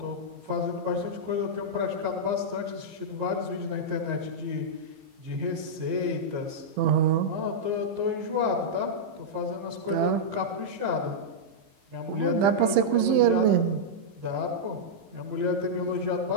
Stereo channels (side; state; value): left; late; 15 ms